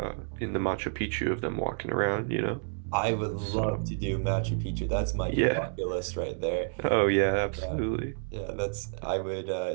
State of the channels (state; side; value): silent; left; 58 dB below the other